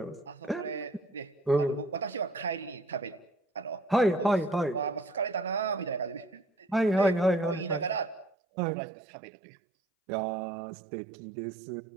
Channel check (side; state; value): left; drops out; at 8.3 s